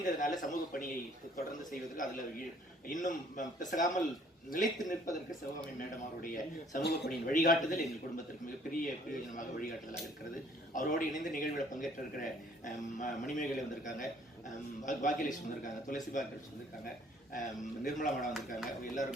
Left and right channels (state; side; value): normal; both; correlation 0.59